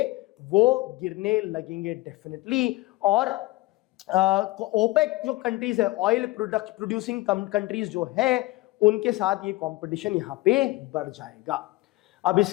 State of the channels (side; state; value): right; quieter; 20.0 dB